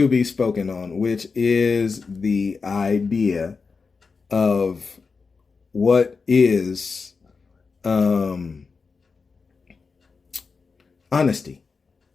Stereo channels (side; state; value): right; quieter; 4.8 dB